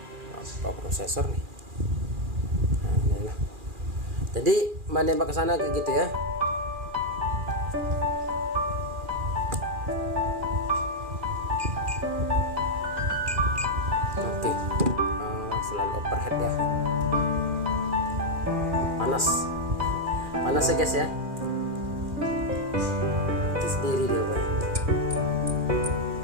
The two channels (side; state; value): left; late; 2.4 ms